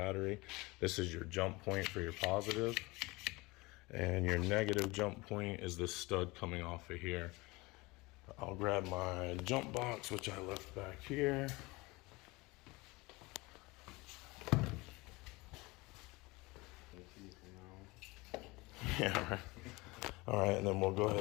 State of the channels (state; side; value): quieter; right; 23.3 dB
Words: This is your jump point for your positive. And your negative jump point is this stud coming off of here. I'll grab my jump box, which I left back here. Yeah, right. All right, and then we'll go